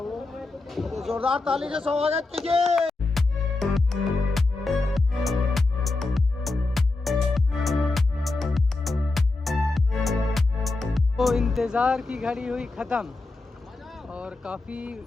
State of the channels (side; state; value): right; quieter; 3.3 dB